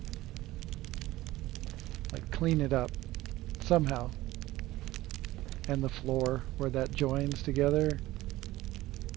Like, clean it up somehow. And the floor where that joins together.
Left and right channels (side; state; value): left; quieter; 17.0 dB